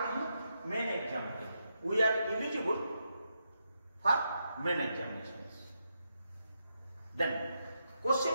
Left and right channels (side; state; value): both; inverted; correlation -0.83